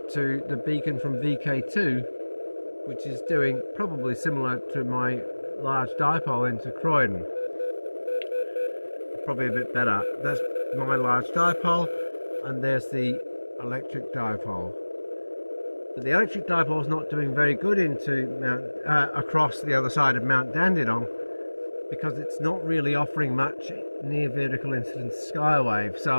to the beacon from VK2, which is doing probably similar to my large dipole into Croydon. Probably a bit better. That's my large dipole, and there's the electric dipole. But the electric dipole is not doing very good into across the other side of Mount Dandenong, because it's not really offering much near vertical incidence skywave,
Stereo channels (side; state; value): both; inverted; correlation -1.00